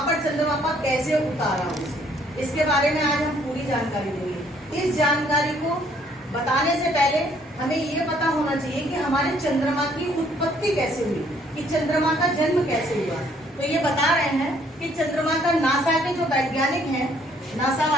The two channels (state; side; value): normal; both; correlation 0.64